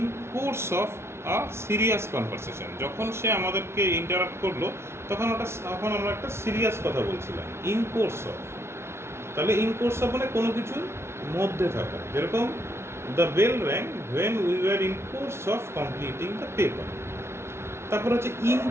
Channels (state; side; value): late; left; 0.12 ms